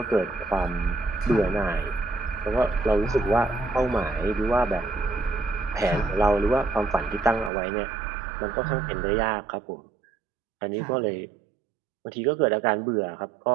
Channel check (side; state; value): left; drops out; at 7.5 s